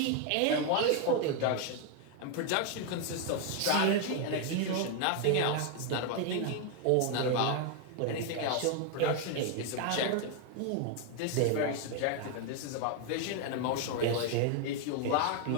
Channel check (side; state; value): both; different; correlation 0.01